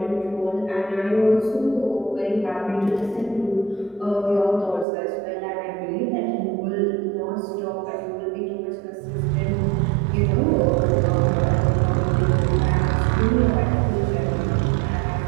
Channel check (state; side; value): drops out; left; at 4.9 s